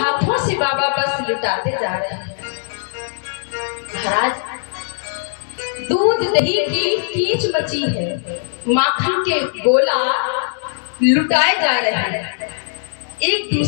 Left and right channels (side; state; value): right; silent; digital silence